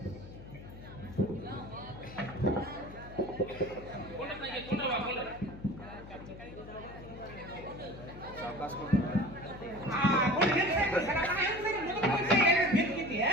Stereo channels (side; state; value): left; noise; hum, 15 dB below the sound